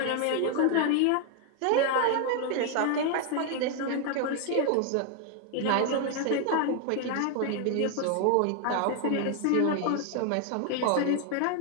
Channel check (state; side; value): different; both; correlation 0.00